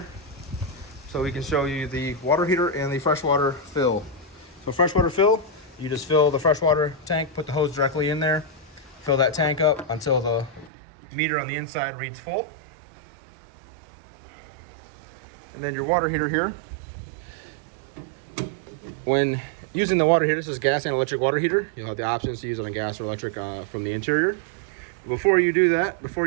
so we can show you the water heater and the freshwater fill. So freshwater fill, you just fill the freshwater tank, put the hose directly in there, fill that tank up until the meter on the inside reads full. And then your water heater here. When using the water heater, this is gas and electric water heater. You'll have the options to use it on gas or electric from the interior. But before you do that, before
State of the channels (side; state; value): left; drops out; at 10.7 s